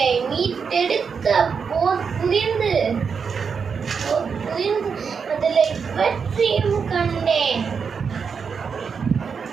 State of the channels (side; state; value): left; quieter; 6.0 dB